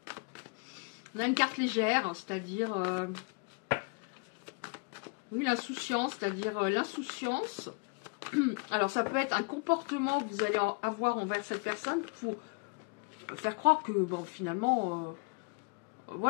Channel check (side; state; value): right; quieter; 32.4 dB